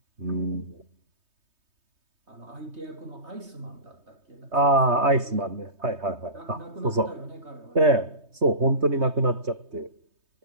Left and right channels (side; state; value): left; late; 3.2 ms